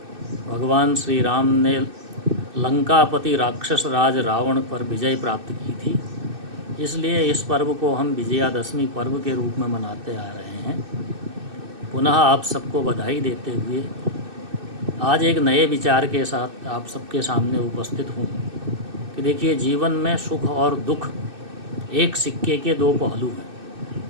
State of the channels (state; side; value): late; left; 2.6 ms